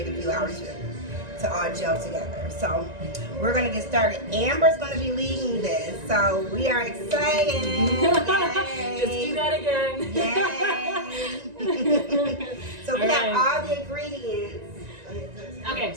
a few hours to all gel together. So we're going to get started. Amber's going to be leading this. So we are excited. Just do that again. Yay. So we have all the ingredients. Okay,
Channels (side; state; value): left; late; 1.9 ms